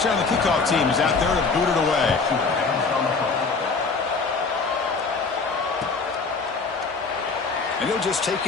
the kickoff team is out there to boot it away. And he'll just take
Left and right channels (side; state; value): right; quieter; 4.4 dB